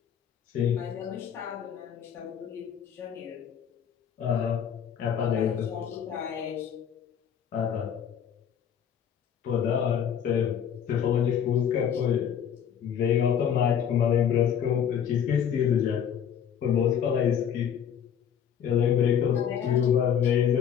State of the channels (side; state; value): right; quieter; 8.5 dB